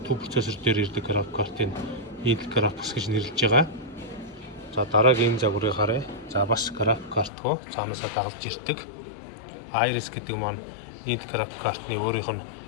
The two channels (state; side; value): drops out; right; at 7.3 s